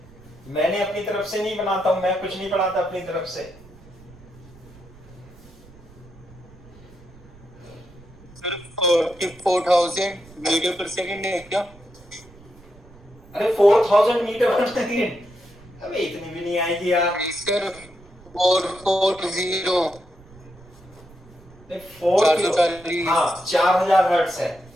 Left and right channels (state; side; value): noise; right; rumble, 23 dB below the sound